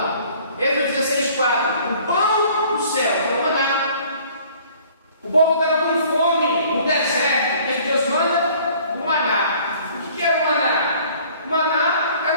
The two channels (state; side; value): inverted; both; correlation -0.54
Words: Êxodo 16:4. O pão do céu, o maná. O povo estava com fome no deserto. O que Deus manda? O maná. O que era o maná? O maná era